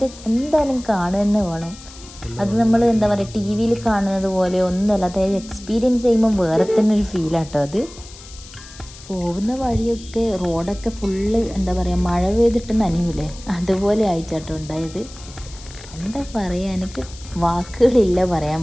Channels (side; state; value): left; noise; hiss, 18 dB below the sound